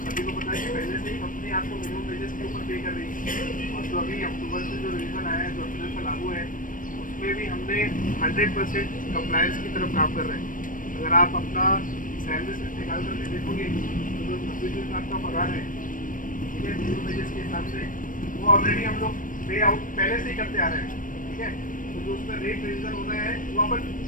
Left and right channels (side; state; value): right; late; 0.39 ms